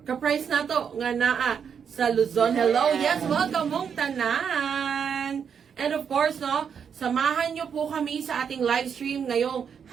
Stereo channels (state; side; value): quieter; left; 7.2 dB